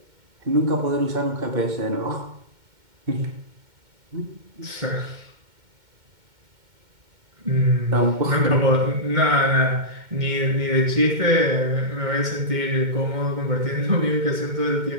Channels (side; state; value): left; late; 2.1 ms